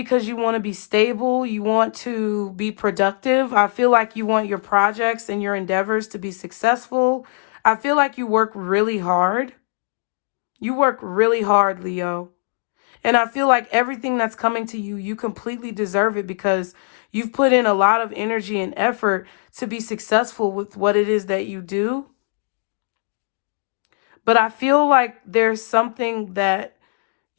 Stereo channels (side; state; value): right; silent; digital silence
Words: you want to be stable. You want to be productive. I feel like you want your projects and your endeavors to be successful. I feel like you work really hard. You work really hard, Leo. And I feel like everything that's coming to you, you completely deserve it because you've put in a lot of energy and effort to be successful with what it is that you do. But I feel like there's something that